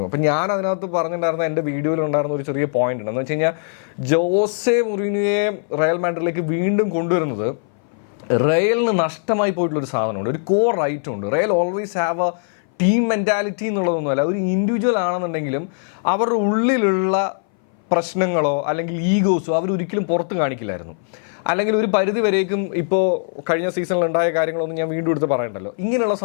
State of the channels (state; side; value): silent; right; 60 dB below the other